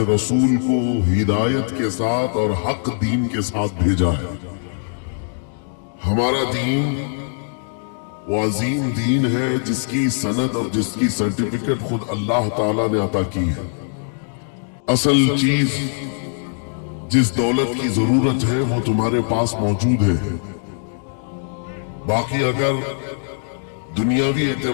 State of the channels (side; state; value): right; silent; digital silence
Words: رسول کو ہدایت کے ساتھ اور حق دین کے ساتھ بھیجا ہے۔ ہمارا دین وہ عظیم دین ہے جس کی سند اور جس کی سرٹیفکیٹ خود اللہ تعالیٰ نے عطا کی ہے۔ اصل چیز جس دولت کی ضرورت ہے وہ تمہارے پاس موجود ہے، باقی اگر دنیاوی